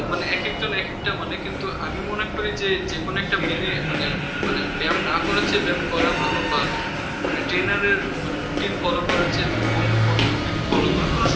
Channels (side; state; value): both; identical; correlation 1.00